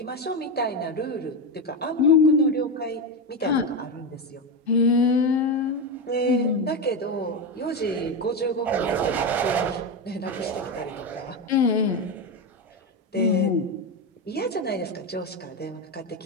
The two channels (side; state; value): both; normal; correlation 0.13